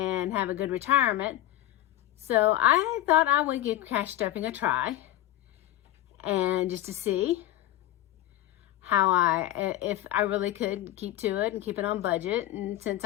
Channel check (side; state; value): right; quieter; 14.2 dB